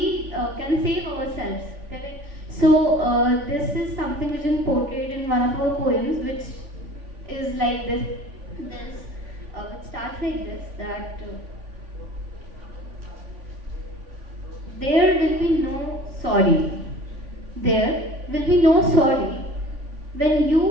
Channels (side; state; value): left; late; 3.5 ms